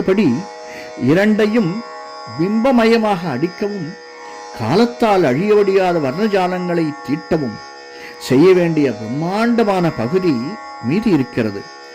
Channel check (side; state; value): both; identical; correlation 1.00